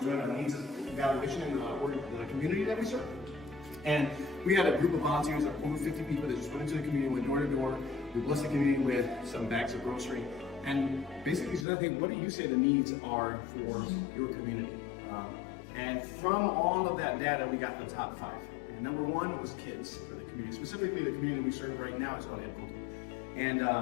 doing a needs evaluation in the community that we serve. And we had a group of volunteers, over 50 people that just went into the community, went door to door. We blessed the community with some bags of grocery. And basically said, hey, what do you say the needs are for your community? And from all of that data, we got the top 5. And number 1 was kids for the community. Specifically, the community we serve right now is called Ed Punto. And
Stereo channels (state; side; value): drops out; right; at 11.7 s